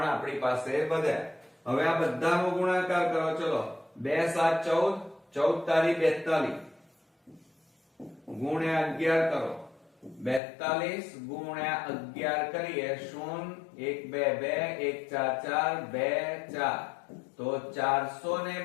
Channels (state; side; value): drops out; right; at 10.4 s